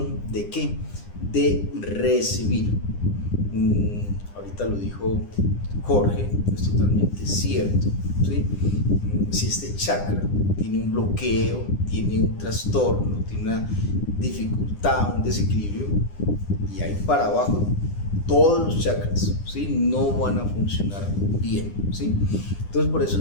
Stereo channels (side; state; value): right; late; 9.9 ms